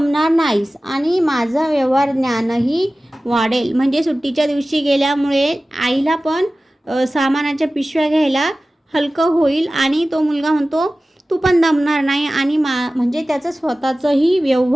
नाहीस आणि माझं व्यवहार ज्ञानही वाढेल. म्हणजे सुट्टीच्या दिवशी गेल्यामुळे आईला पण सामानाच्या पिशव्या घ्यायला हलकं होईल आणि तो मुलगा म्हणतो तू पण दमणार नाही आणि म्हणजे त्याचं स्वतःचंही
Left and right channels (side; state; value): both; normal; correlation 0.96